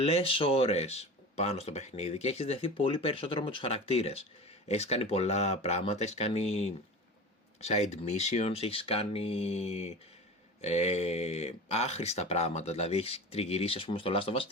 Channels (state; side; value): normal; both; correlation 0.32